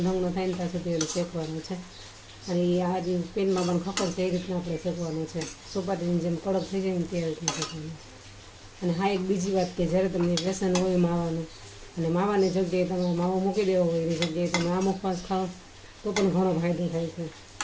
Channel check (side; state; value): both; identical; correlation 1.00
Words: રંગનો થાય ને ત્યાં સુધી એને શેકવાનો છે. અને એ આ પેનમાં પણ ખબર છે એ રીતના આપણે શેકવાનું છે. સોપારીની જેમ કડક થઈ જાય ને તે રીતના શેકવાનું છે. અને હા, એક બીજી વાત કે જ્યારે તમને વ્યસન હોય માવાનું અને માવાની જગ્યાએ તમે માવો મૂકી દેવો હોય એની જગ્યાએ તમે આ મુખવાસ ખાઓ તો પણ ઘણો ફાયદો થાય છે.